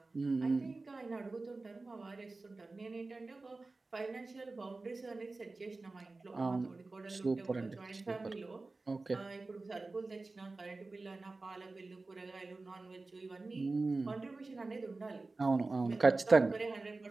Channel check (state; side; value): quieter; left; 3.5 dB